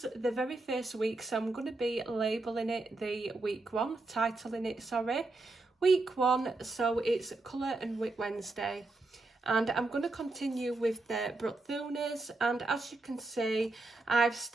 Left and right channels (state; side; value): quieter; left; 3.2 dB